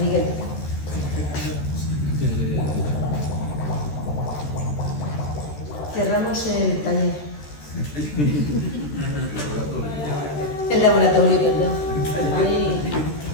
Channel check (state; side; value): late; right; 13 ms